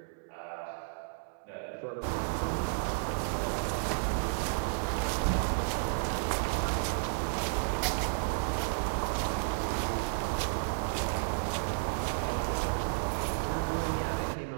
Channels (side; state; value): left; silent; digital silence